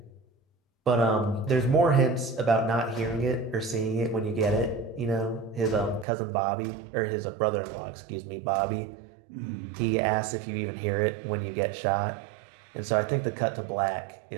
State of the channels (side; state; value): left; drops out; at 6.1 s